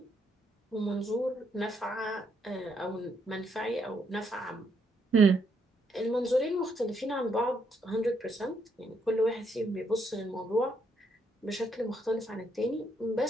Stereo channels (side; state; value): both; normal; correlation 0.74